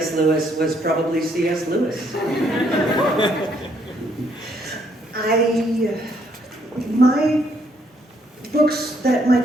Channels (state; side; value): normal; both; correlation 0.70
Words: Lewis was probably C.S. Lewis. My books that my